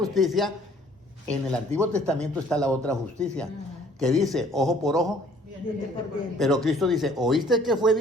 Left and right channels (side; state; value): both; normal; correlation 0.57